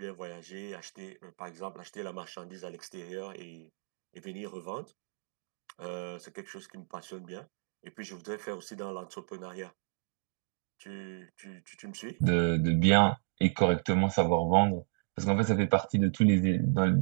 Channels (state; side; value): silent; left; digital silence